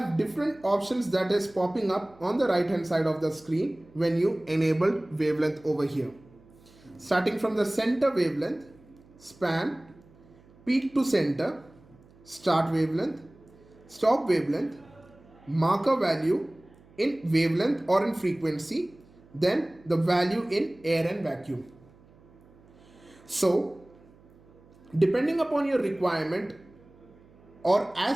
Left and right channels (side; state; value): right; noise; hum, 27 dB below the sound